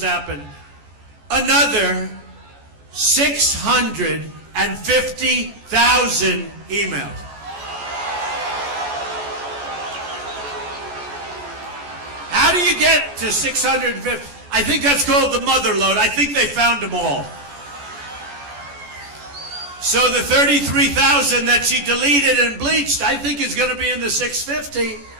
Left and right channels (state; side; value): late; left; 14 ms